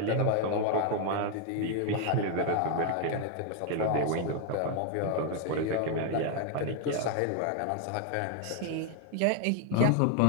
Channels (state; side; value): different; both; correlation 0.00